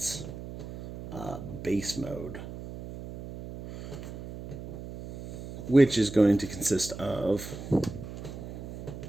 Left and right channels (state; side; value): noise; right; hum, 10 dB below the sound